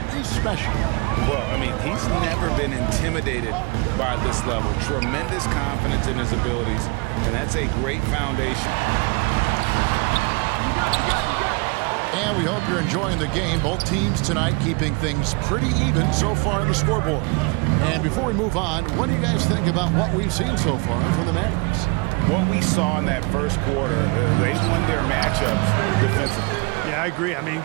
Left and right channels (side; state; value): left; quieter; 29.1 dB